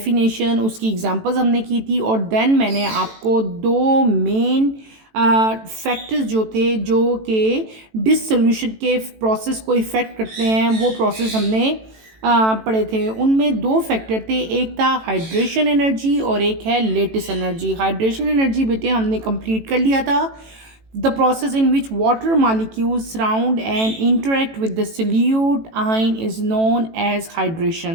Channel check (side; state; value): left; late; 18 ms